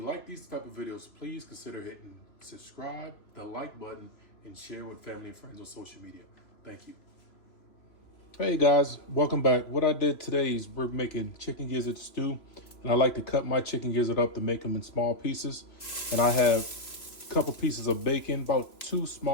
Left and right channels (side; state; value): right; late; 3.0 ms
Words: like these type of videos, please consider hitting subscribe, the like button, and share with family and friends on social media. Thank you. Hey guys, welcome back. What I did today is we're making chicken gizzard stew, and I like to cut my chicken gizzard up to make them in small pieces. And I have a couple pieces of bacon, about 2